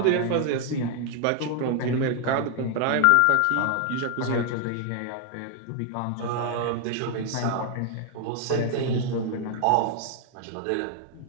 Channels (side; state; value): both; different; correlation 0.00